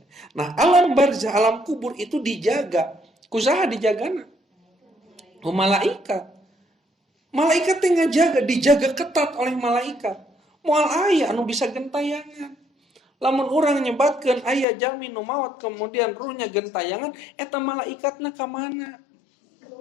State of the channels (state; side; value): drops out; right; at 14.7 s